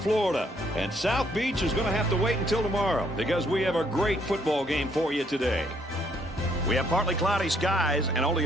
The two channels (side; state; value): both; normal; correlation 0.69